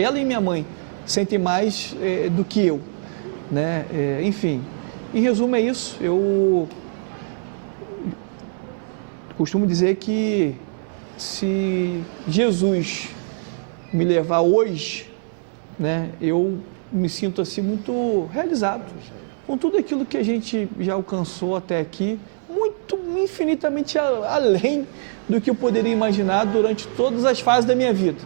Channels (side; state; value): left; silent; digital silence